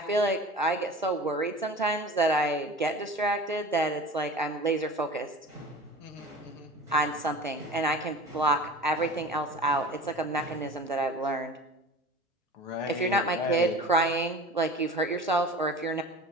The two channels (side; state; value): both; normal; correlation 0.37